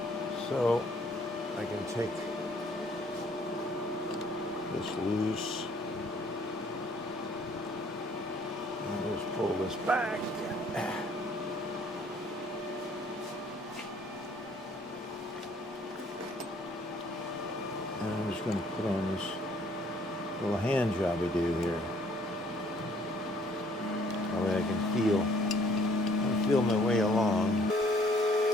so I can take this loose and just pull this back. And I'm just going to put on this little hand job I do here. That way I can feel my way along.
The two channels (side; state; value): both; normal; correlation 0.61